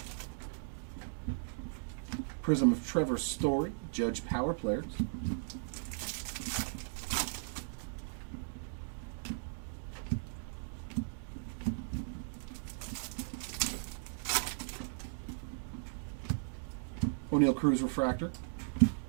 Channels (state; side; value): silent; left; digital silence